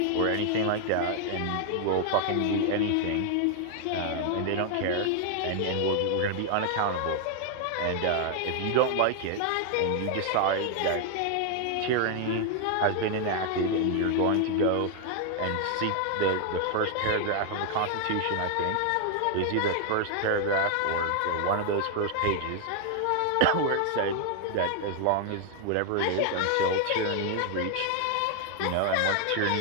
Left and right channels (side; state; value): both; different; correlation 0.00